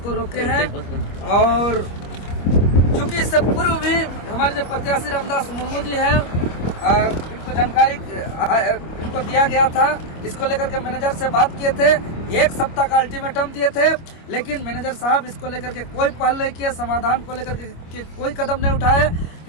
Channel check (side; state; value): right; late; 25 ms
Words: को रोके हैं। और चूंकि इससे पूर्व भी हमारे जो प्रत्याशी रामदास मुर्मू जी हैं, इनको जानकारी इनको दिया गया था, इसको लेकर के मैनेजर से बात किए थे, 1 सप्ताह का अल्टीमेटम दिए थे, लेकिन मैनेजर साहब इसको लेकर के कोई पहल नहीं किए, समाधान को लेकर के कोई कदम नहीं उठाए।